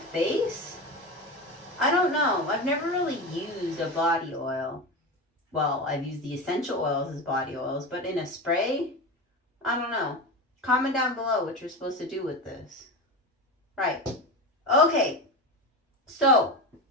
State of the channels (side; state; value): both; normal; correlation 0.22